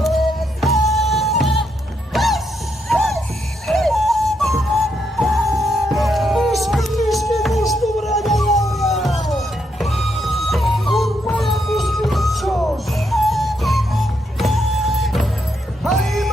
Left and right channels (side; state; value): both; normal; correlation 0.79